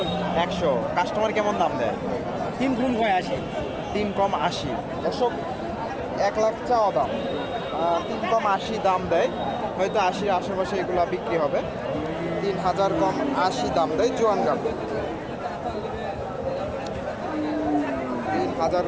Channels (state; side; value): identical; both; correlation 1.00